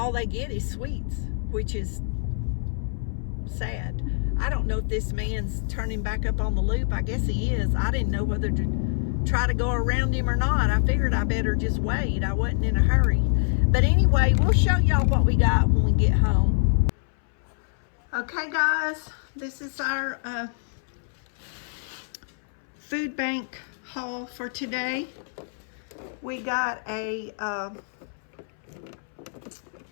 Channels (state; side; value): silent; right; 61 dB below the other